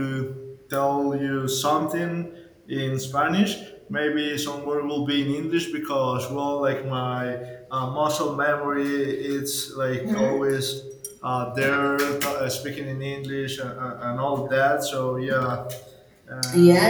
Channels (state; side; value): identical; both; correlation 1.00